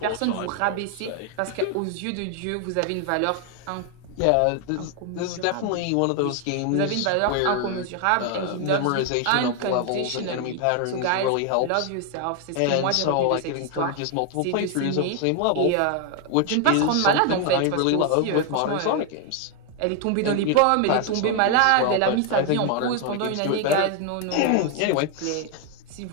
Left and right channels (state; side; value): different; both; correlation 0.01